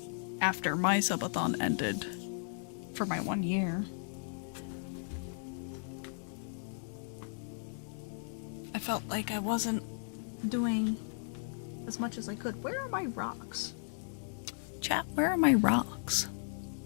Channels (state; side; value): silent; right; digital silence